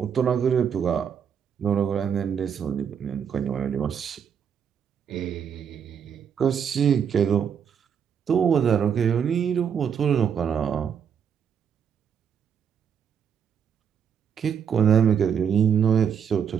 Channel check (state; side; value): quieter; left; 7.7 dB